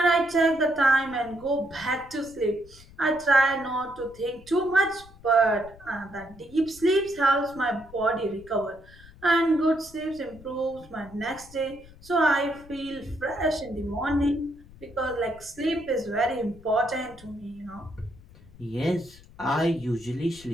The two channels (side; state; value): left; noise; rumble, 22 dB below the sound